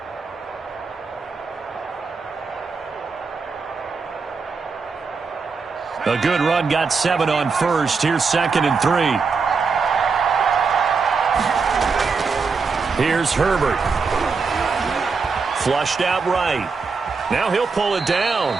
A good run, got 7 on 1st. Here's 2nd and 3. Here's Herbert. Flushed out right. Now he'll pull it down.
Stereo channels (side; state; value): left; quieter; 4.9 dB